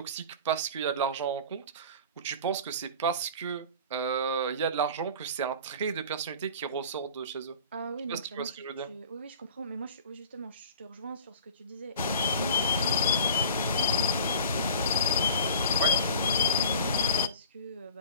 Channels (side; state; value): both; inverted; correlation -0.40